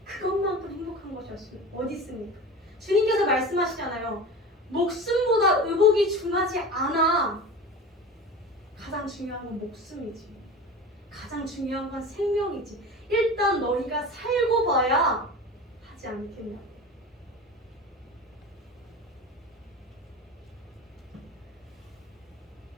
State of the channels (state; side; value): normal; both; correlation 0.32